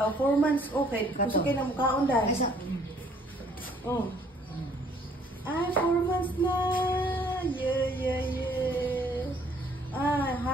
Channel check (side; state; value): both; normal; correlation 0.61